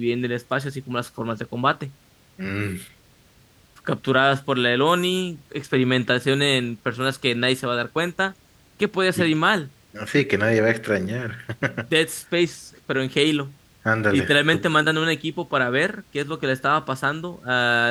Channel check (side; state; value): both; identical; correlation 1.00